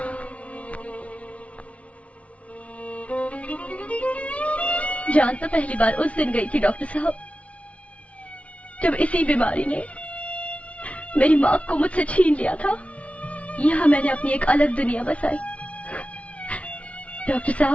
जान तो पहली बार उस दिन गई थी डॉक्टर साहब, जब इसी बीमारी ने मेरी माँ को मुझसे छीन लिया था। यहाँ मैंने अपनी एक अलग दुनिया बसाई। डॉक्टर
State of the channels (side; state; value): right; late; 0.064 ms